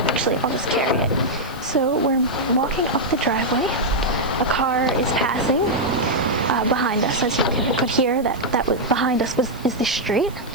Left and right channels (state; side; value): noise; right; hiss, 22 dB below the sound